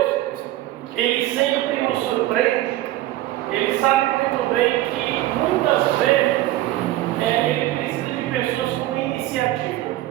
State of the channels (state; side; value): quieter; left; 15.5 dB